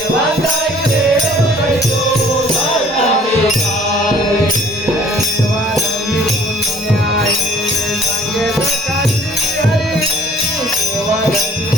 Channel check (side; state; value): both; normal; correlation 0.53